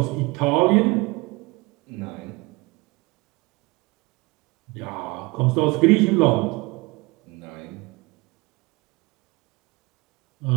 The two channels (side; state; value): left; quieter; 24.6 dB